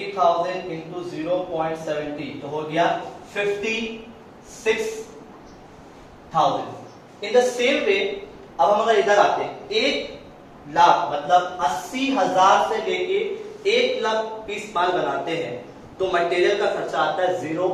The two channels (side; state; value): both; identical; correlation 1.00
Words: इंटू 0.70, तो हो गया 56,000। इन द सेम वे अब हम अगर इधर आते हैं 1 लाख मतलब 80,000 से लेके 1 लाख पीस माल बनाते हैं तो मटेरियल का खर्चा आता है